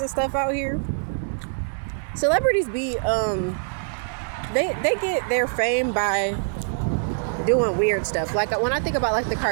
stuff out here, celebrities be they get their fame by doing weird stuff. Like, when I think about like the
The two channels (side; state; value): left; silent; digital silence